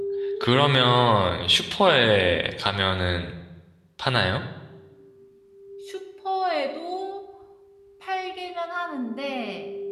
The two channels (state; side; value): identical; both; correlation 1.00